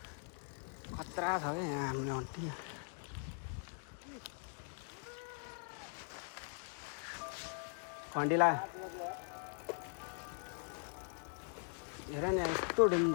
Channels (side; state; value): right; silent; 50 dB below the other